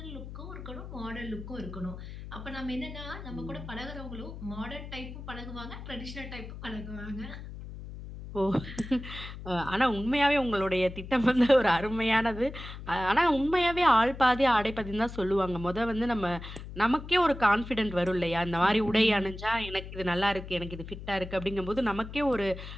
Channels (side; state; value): left; noise; hum, 11 dB below the sound